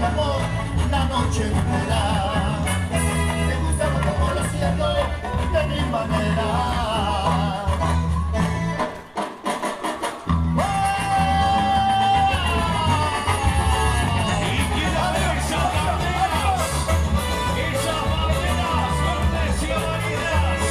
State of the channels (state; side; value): identical; both; correlation 1.00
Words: amor la noche entera. Me gusta como lo hacía yo de mi manera.